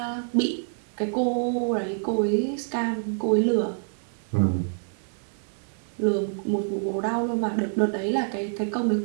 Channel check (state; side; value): silent; left; digital silence